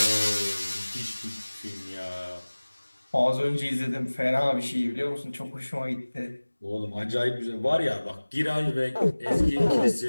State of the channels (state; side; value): inverted; both; correlation -1.00